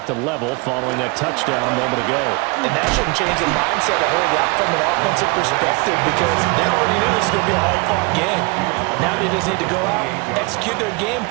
to level following that touchdown a moment ago. And that shouldn't change the mindset a whole lot from an offensive perspective because they already knew this was going to be a hard-fought game. Now they just need to go out, execute their game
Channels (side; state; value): left; quieter; 28.0 dB